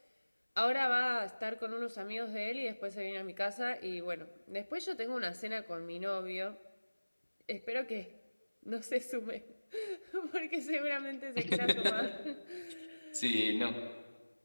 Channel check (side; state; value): both; inverted; correlation -1.00